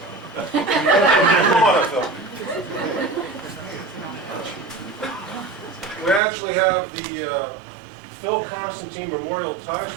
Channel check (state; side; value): drops out; left; at 6.2 s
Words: Come on up, Phil. We actually have the Phil Konstantin Memorial Tie